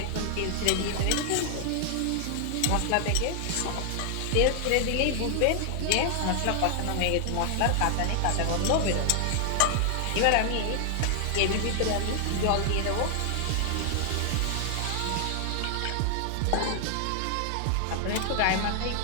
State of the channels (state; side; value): different; both; correlation 0.00